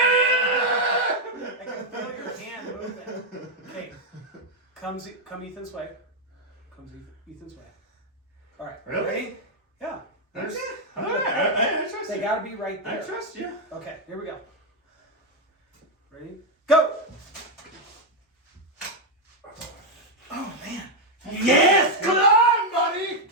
I can feel your hand moving. Okay. Come Ethan's way. Comes Ethan's way. All right. Really? Ready? Yeah. There's- All right, I trust They you. gotta be right I there. trust you. Okay. Here we go. Ready? Go. Oh man. Yes, come on, buddy.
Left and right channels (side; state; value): both; normal; correlation 0.02